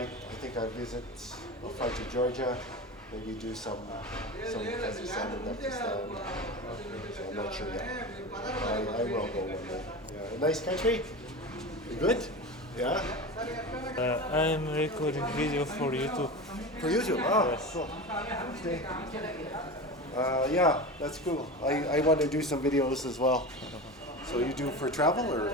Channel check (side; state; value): both; normal; correlation 0.27